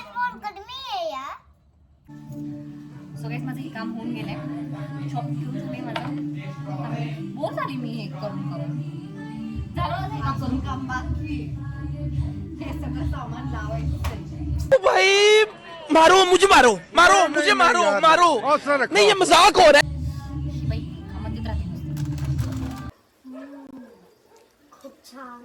सो गाईस माझं हे काम होऊन गेलंय. शॉप घेऊन झाले माझं. बोर झाली मी हे करून झालं माझं हे काम करून. काम बाकी हे सगळं सामान लावायचं. भाई मारो मुझे मारो नहीं ये मजाक हो रहा है. बाई कामात राहते नुसतं. खूप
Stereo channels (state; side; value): identical; both; correlation 1.00